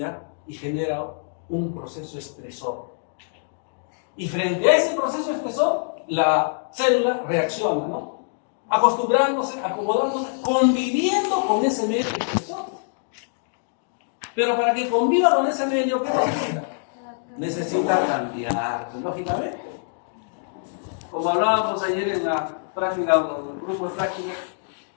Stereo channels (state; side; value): silent; right; digital silence